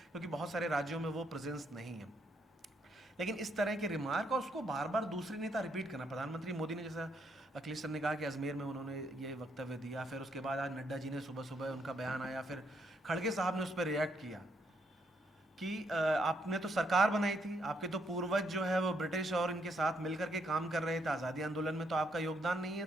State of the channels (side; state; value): both; normal; correlation 0.74